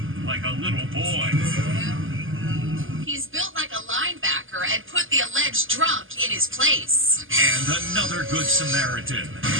like a little boy. He's built like a linebacker and put the alleged drunk in his place. And another good Samaritan.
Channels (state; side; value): late; left; 0.58 ms